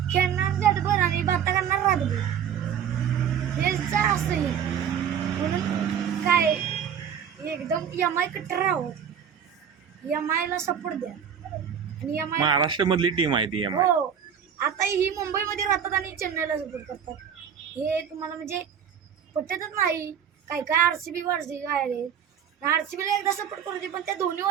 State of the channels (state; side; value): quieter; left; 8.2 dB